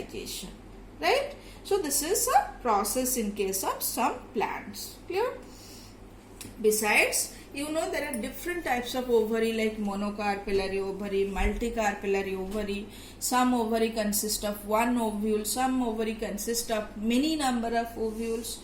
right? So this is a process in case of some plants. Clear? Besides, you know there are different types of ovary like monocarpellary ovary, multicarpellary ovary. Some ovary consist of one ovule, some ovary consist of many number of ovules.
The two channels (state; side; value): identical; both; correlation 1.00